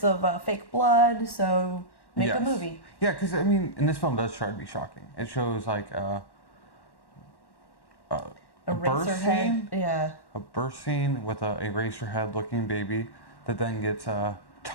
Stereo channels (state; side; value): late; right; 1.1 ms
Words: of fake blood, so make a movie. Yeah, because, and this film does try to be shocking. It shows, like, a birth scene. Yeah. A birth scene with a Eraserhead looking baby that then gets